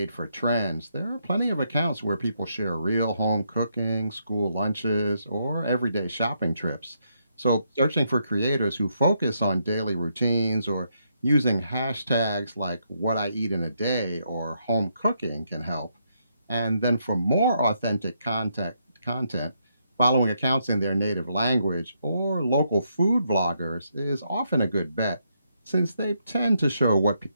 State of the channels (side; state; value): both; inverted; correlation -0.77